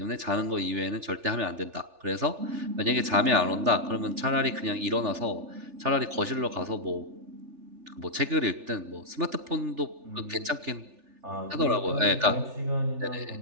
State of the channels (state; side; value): late; left; 3.4 ms